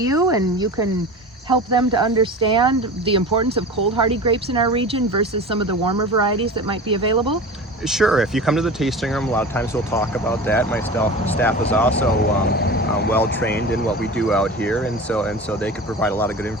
and you can help them to understand the importance of cold hardy grapes in our region versus some of the warmer varieties that might be available? Sure. If you come to the tasting room, a lot of times we'll talk about that. My staff is also well trained in what we do out here, and so they could provide a lot of good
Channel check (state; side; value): normal; both; correlation 0.33